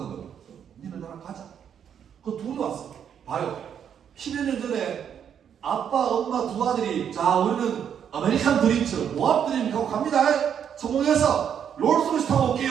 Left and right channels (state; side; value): quieter; left; 8.5 dB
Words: 니는 나랑 가자. 그 둘이 왔어. 봐요. 10여 년 전에 아빠, 엄마 두 아들이 자 우리는 아메리칸 드림처럼 모압 드림 가고 갑니다. 성공해서 롤스로이스 타고